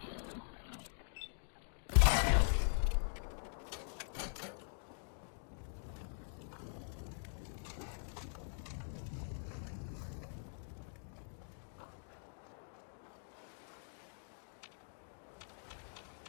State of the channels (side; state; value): right; silent; digital silence